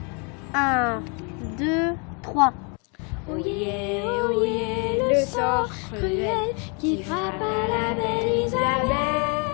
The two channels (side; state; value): right; quieter; 35.1 dB